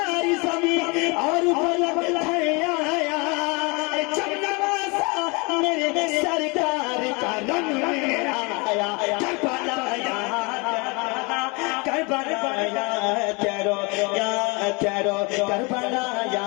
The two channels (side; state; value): right; quieter; 29.1 dB